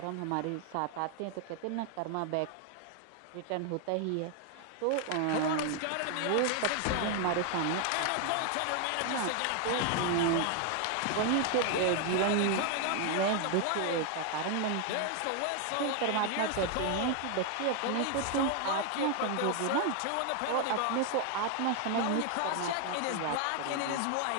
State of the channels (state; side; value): different; both; correlation 0.00